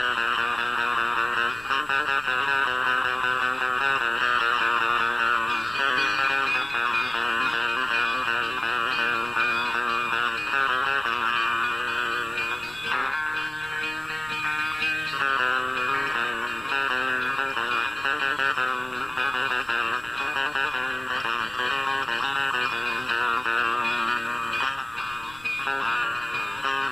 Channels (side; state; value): left; noise; rumble, 24 dB below the sound